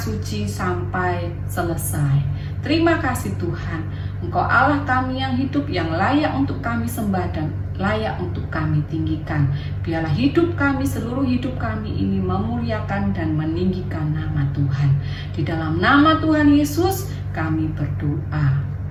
sampai selesai. Terima kasih Tuhan. Engkau Allah kami yang hidup, yang layak untuk kami sembah dan layak untuk kami tinggikan. Biarlah hidup kami, seluruh hidup kami ini memuliakan dan meninggikan nama Tuhan. Di dalam nama Tuhan Yesus kami berdoa.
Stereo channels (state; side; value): identical; both; correlation 1.00